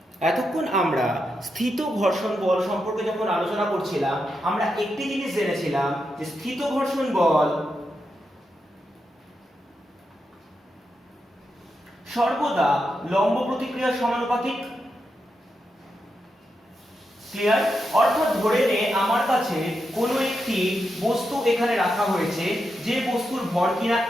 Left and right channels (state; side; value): normal; both; correlation 0.86